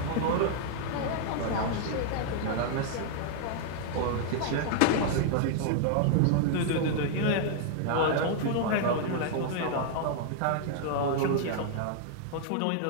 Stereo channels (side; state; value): both; different; correlation 0.00